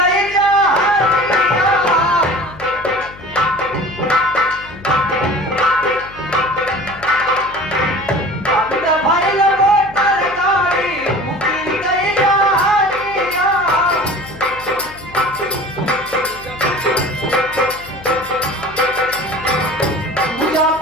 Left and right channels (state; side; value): noise; left; hum, 20 dB below the sound